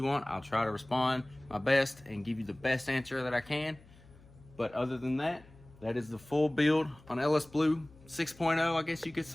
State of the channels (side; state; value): left; noise; hum, 24 dB below the sound